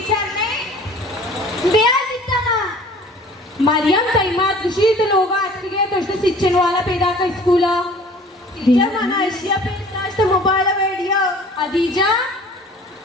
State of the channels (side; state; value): both; normal; correlation 0.48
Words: ने ब्याह दिता ना. मरियम तैमात खुशी तो लोग आज के गए तो उसने सिच्चन वाला पैदा का स्कूल टीचर माना एशिया पे नाच तो मोबाइल वीडियो अदीजा